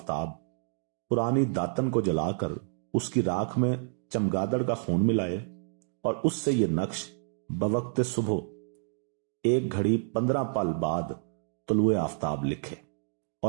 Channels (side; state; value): left; silent; digital silence